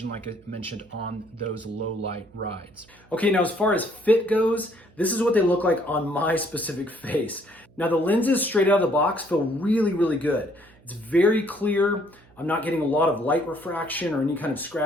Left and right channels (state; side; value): noise; right; hum, 28 dB below the sound